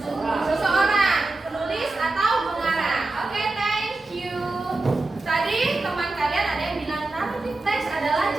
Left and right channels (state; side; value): quieter; left; 3.1 dB